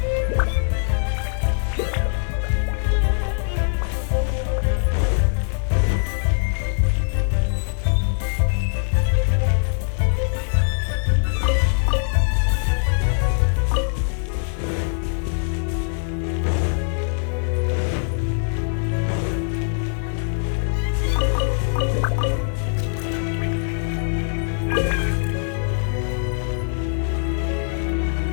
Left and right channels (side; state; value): right; silent; 61 dB below the other